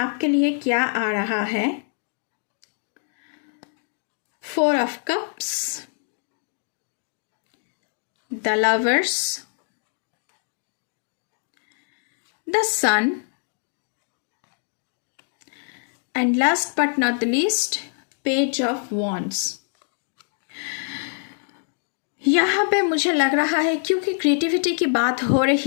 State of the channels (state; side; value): silent; right; digital silence